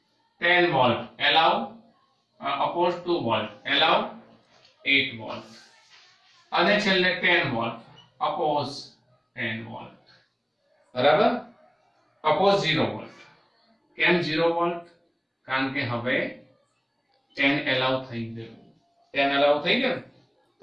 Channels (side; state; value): both; identical; correlation 1.00